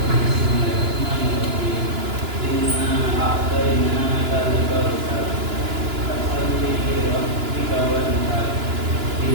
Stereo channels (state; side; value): late; left; 2.9 ms